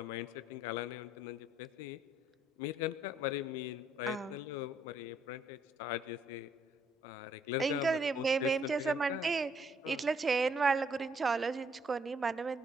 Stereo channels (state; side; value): normal; both; correlation 0.68